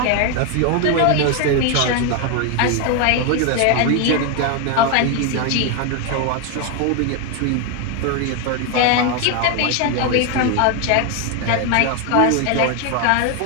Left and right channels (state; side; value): different; both; correlation 0.01